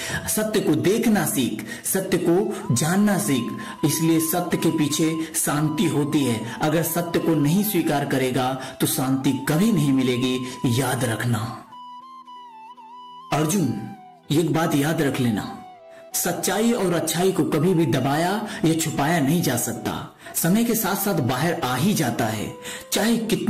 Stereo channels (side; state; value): both; identical; correlation 1.00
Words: सत्य को देखना सीख, सत्य को जानना सीख। इसलिए सत्य के पीछे शांति होती है। अगर सत्य को नहीं स्वीकार करेगा तो शांति कभी नहीं मिलेगी, याद रखना। अर्जुन, एक बात याद रख लेना, सच्चाई और अच्छाई को कभी भी दबाया या छुपाया नहीं जा सकता। समय के साथ साथ बाहर आ ही जाता है, चाहे